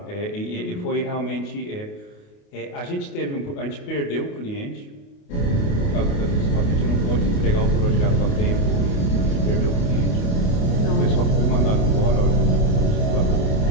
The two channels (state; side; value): late; right; 28 ms